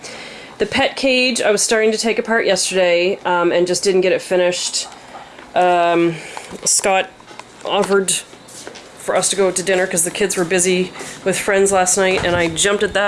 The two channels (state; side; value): identical; both; correlation 1.00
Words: The pet cage I was starting to take apart yesterday and just didn't get it finished. Scott offered for us to go to dinner because the kids were busy with friends last night, and I jumped at